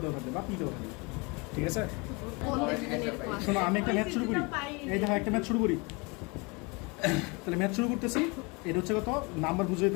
দেওয়া থাকবে বা পি দেওয়া থাকবে, ঠিক আছে? শোনো, আমি একটা ম্যাথ শুরু করি, এই দেখো একটা ম্যাথ শুরু করি। তাহলে ম্যাথ শুরু করতেছি, এটা হচ্ছে কত নাম্বার বুঝে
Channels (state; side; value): quieter; right; 28.7 dB